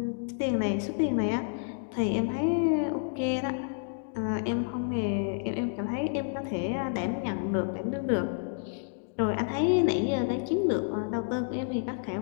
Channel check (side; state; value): right; silent; digital silence